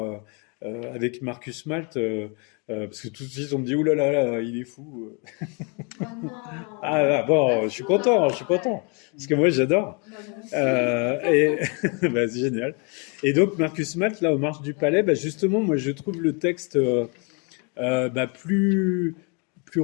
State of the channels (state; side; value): quieter; right; 34.2 dB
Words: avec Marcus Malt, parce que tout de suite, on me dit, ouh là là, il est fou. Oh non, Ah là, bon, pas je suis fou content, je suis alors, content, ouais. parce que moi, j'adore. Bah, moi aussi. Et bah, c'est génial. Et donc, Marcus Malt, là, aux Marches du Palais, bah, justement, moi, je trouve le texte bah, plus